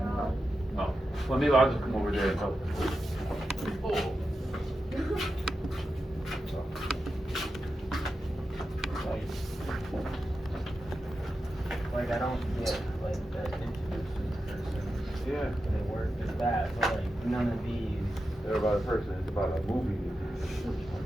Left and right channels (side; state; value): both; normal; correlation 0.90